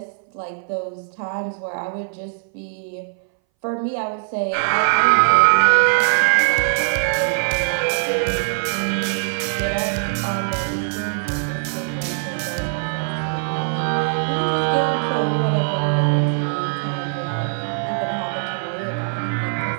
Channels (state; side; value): silent; left; 61 dB below the other